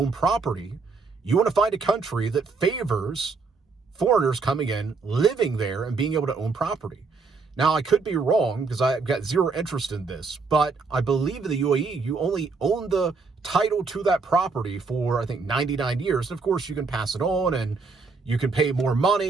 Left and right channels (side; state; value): left; quieter; 4.5 dB